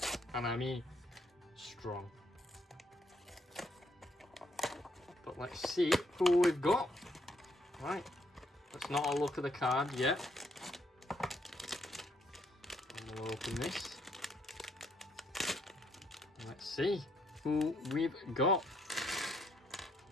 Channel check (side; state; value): both; normal; correlation 0.72